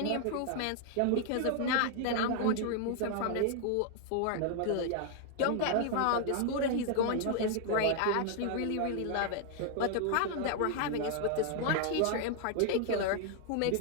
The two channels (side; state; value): both; different; correlation 0.00